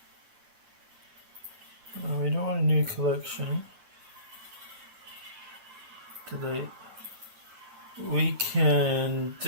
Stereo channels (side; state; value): left; late; 9.1 ms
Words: new collection. Delete. We can